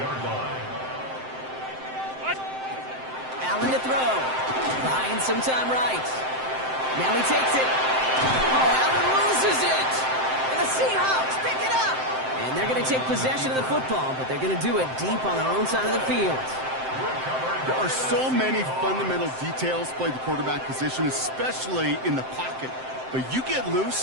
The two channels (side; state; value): left; late; 7.7 ms